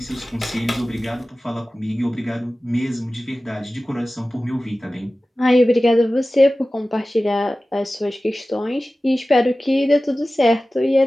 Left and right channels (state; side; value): normal; both; correlation 0.96